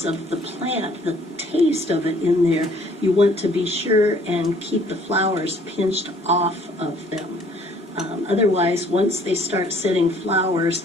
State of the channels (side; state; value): both; normal; correlation 0.59